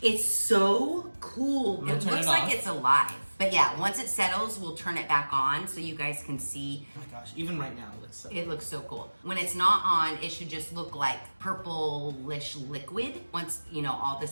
It's so cool. I'm gonna It turn looks it like off. it's alive. But yeah, once it settles, we'll turn it back on so you guys can see. Oh my gosh, even right now it looks so It looks so cool. When it's not on, it should just look like purplish liquid. Once, you know, all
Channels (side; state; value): both; inverted; correlation -1.00